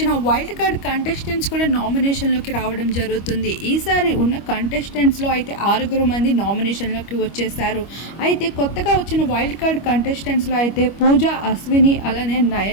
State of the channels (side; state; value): right; late; 25 ms